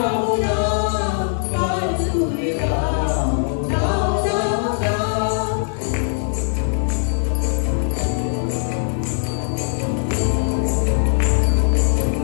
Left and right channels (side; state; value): right; silent; 66 dB below the other